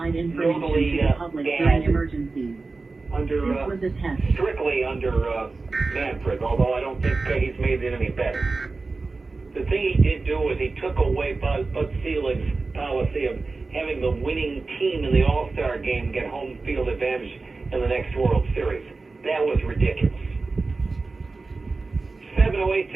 information to the public during emergencies. Strictly under Manfred, although I don't think he's made it any better. The thing he did do was he took away Bud Selig's policy of having the winning team in the All-Star game get home field advantage in the next World Series. That was ridiculous. 708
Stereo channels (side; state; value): left; quieter; 3.8 dB